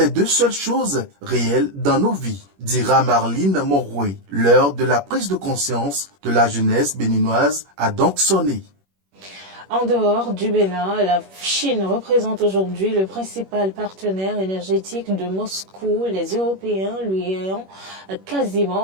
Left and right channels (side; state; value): left; late; 21 ms